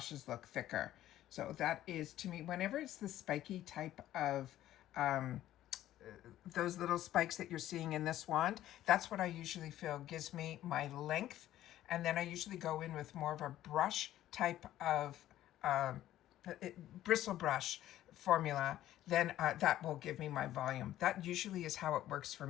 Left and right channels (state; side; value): quieter; right; 13.3 dB